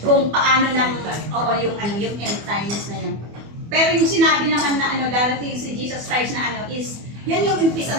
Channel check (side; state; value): left; late; 24 ms